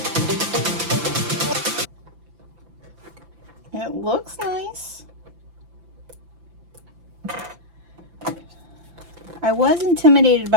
looks nice. I was intimidated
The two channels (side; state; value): left; late; 5.9 ms